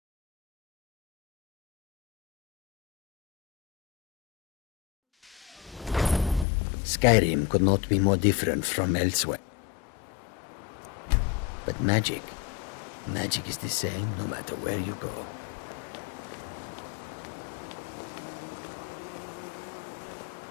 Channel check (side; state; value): right; drops out; at 6.5 s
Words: Skyrim could not be more different from elsewhere. But magic is the same no matter where you go.